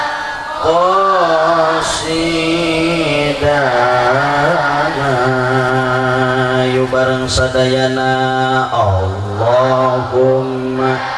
bareng sadayana. Allahumma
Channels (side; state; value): both; identical; correlation 1.00